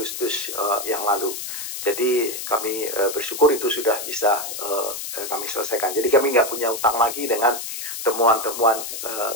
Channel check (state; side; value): noise; left; hiss, 6 dB below the sound